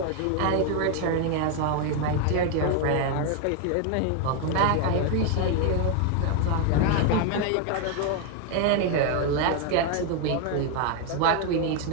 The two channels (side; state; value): both; different; correlation 0.01